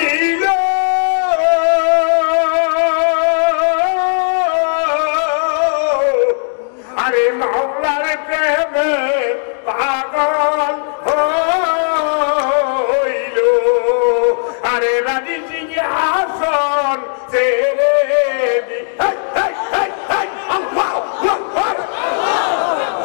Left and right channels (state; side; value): silent; right; digital silence